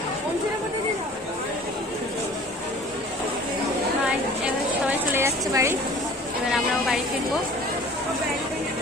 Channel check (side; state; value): both; normal; correlation 0.46